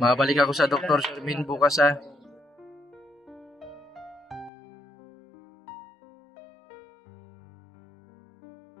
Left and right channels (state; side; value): drops out; right; at 4.5 s